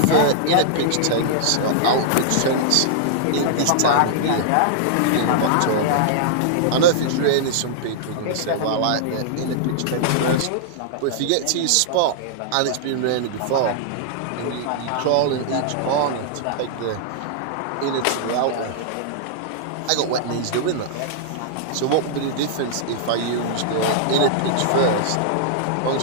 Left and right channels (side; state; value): both; different; correlation -0.01